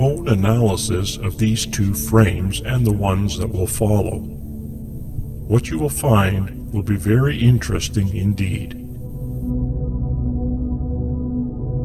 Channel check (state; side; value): identical; both; correlation 1.00